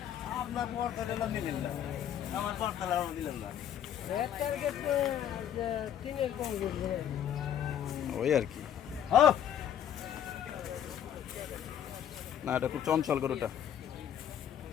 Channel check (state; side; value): quieter; right; 9.8 dB